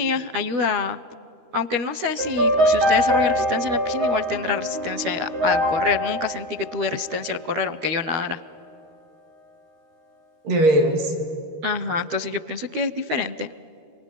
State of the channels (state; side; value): late; left; 13 ms